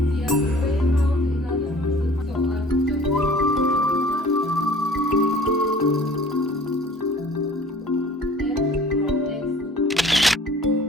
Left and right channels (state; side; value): normal; both; correlation 0.49